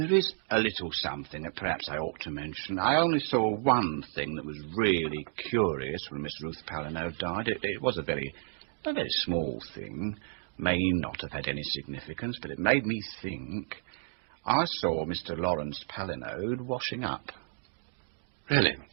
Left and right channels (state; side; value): silent; left; digital silence